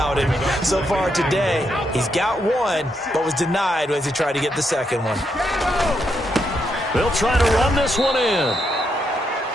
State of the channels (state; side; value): normal; both; correlation 0.79